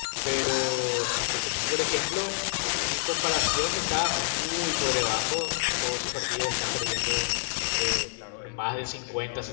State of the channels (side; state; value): right; silent; digital silence